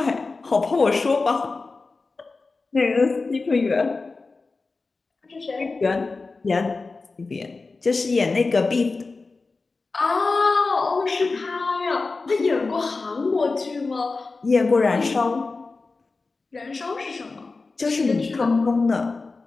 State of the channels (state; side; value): quieter; right; 3.9 dB